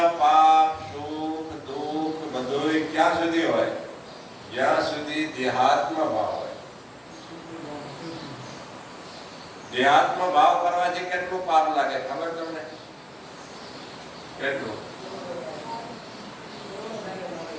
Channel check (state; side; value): identical; both; correlation 1.00